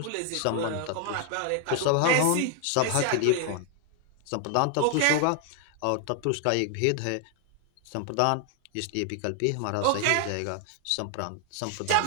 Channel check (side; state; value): both; different; correlation 0.00